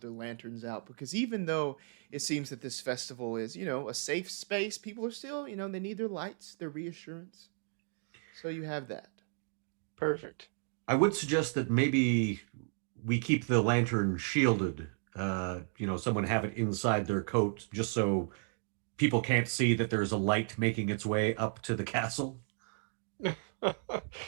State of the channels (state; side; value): silent; left; 55 dB below the other